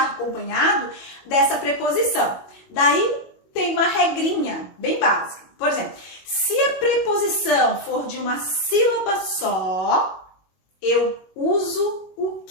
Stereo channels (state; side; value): late; right; 21 ms